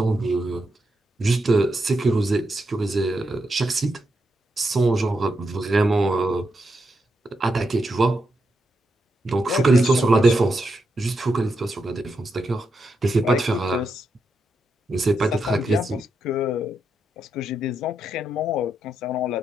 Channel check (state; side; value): normal; both; correlation 0.84